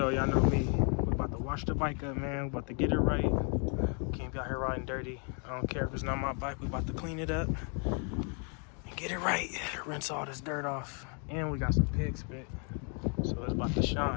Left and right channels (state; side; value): quieter; right; 39.4 dB